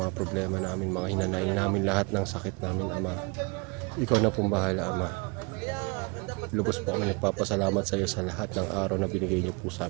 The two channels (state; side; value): quieter; left; 29.7 dB